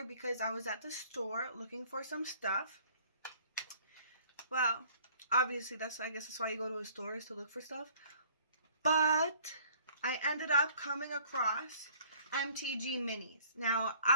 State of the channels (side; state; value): both; inverted; correlation -0.55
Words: because I was at the store looking for some stuff. Well, obviously I guess that's why you go to a store, is to look for stuff. But I ended up coming across MTG minis. Now,